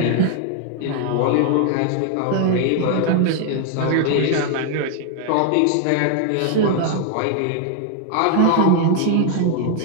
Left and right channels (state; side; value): different; both; correlation 0.00